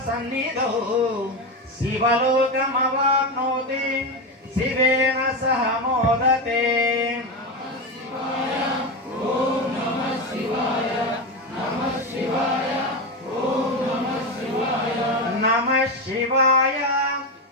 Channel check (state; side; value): normal; both; correlation 0.15